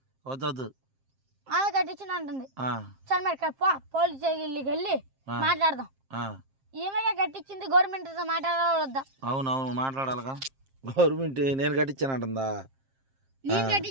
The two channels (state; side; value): late; left; 7.5 ms